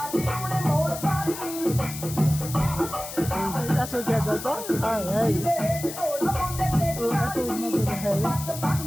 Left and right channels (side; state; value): left; noise; hiss, 10 dB below the sound